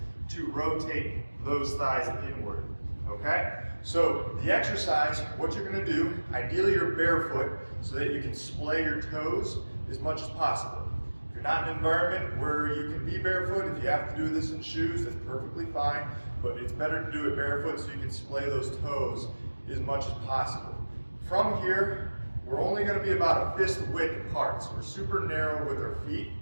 to rotate those thighs inward. Okay? So the exercise, what you're going to do, ideally you're barefoot so that you can splay your toes as much as possible. If you're not in an environment where you can be barefoot, if you have to do this in shoes, that's perfectly fine, but it's better to do it barefoot so you can splay those toes as much as possible. From here, we're only going to be about a fist width apart, so we're super narrow with our feet,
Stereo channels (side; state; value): both; inverted; correlation -1.00